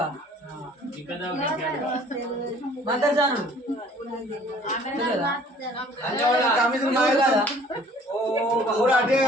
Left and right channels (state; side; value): normal; both; correlation 0.54